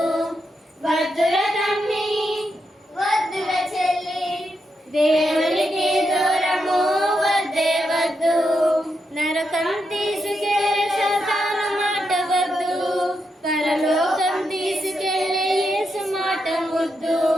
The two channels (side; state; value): both; normal; correlation 0.83